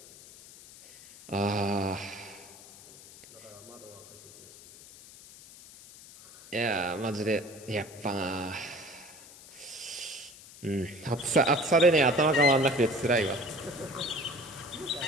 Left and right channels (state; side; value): noise; left; hiss, 19 dB below the sound